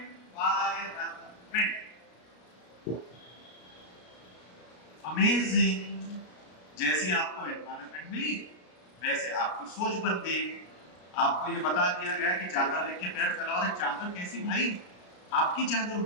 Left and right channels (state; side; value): late; right; 33 ms